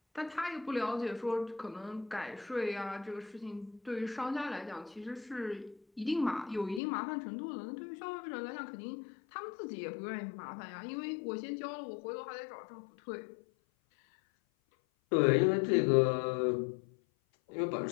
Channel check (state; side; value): drops out; right; at 6.8 s